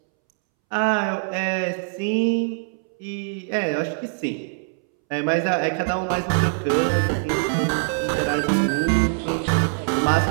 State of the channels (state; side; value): silent; left; 63 dB below the other